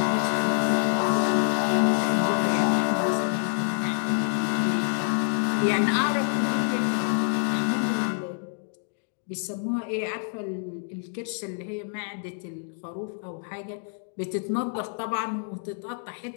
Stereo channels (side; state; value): right; silent; 60 dB below the other